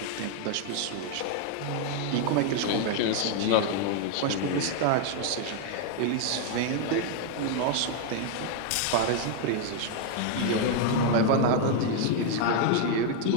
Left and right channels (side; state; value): both; different; correlation 0.01